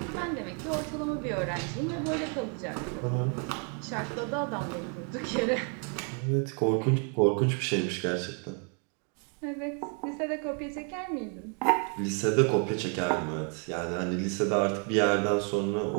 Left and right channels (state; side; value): quieter; left; 39.8 dB